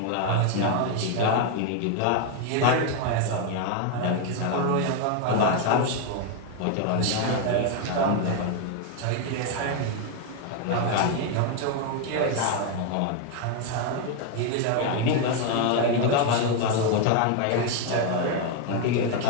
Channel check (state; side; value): different; both; correlation 0.01